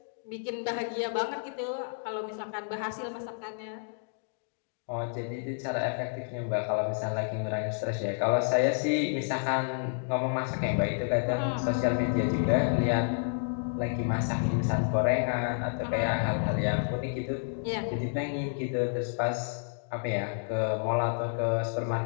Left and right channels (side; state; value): right; silent; digital silence